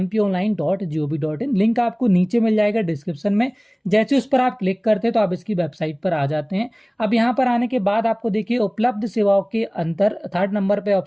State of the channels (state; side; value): identical; both; correlation 1.00